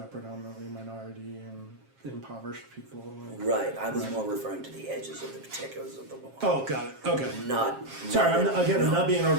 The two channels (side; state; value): left; late; 7.4 ms